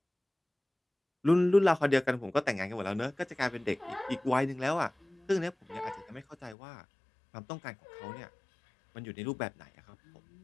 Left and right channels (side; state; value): right; drops out; at 6.6 s